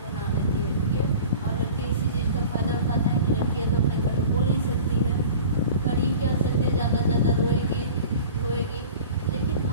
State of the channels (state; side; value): inverted; both; correlation -0.40